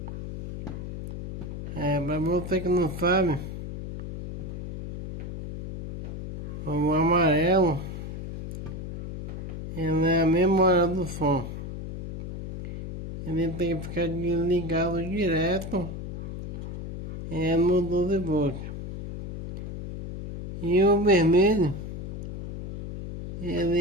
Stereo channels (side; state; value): left; noise; hum, 8 dB below the sound